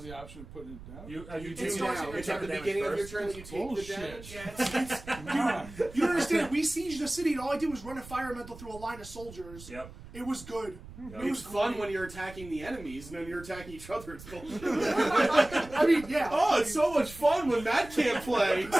the option of putting it down? You You It do starts now. at It's your at the turn. beginning of your Damage turn that you take Bullshit. the damage. Yeah, it's Come on. you don't understand. We sieged the city, and all I did was run a fire elemental through a line of soldiers. Yep. It was good. Yep. It was It's fun great. when you're attacking the enemies and then you're attacking each other. It's bullshit. I mean, yeah. Oh, it's so much fun when Matt can't play.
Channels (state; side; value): noise; right; rumble, 16 dB below the sound